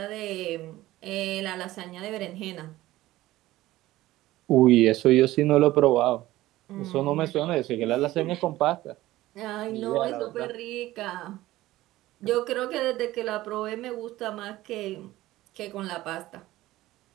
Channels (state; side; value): quieter; left; 16.5 dB